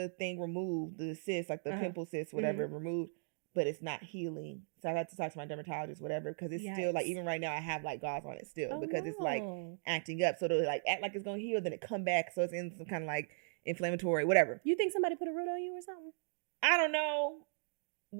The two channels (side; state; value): left; silent; digital silence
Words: thing removed, the cyst, like the pimple cyst, whatever, removed. But it's not healing. So I got to talk to my dermatologist, whatever, because it's still like, even right now I have like gauze on it still because it's like acting up. So it'll like act like it's gonna heal, then it come back. So it's in some kind of like inflammatory, whatever. You think somebody put a root on you or something? I don't know